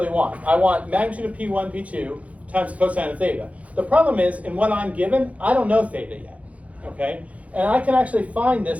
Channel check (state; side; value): late; left; 0.066 ms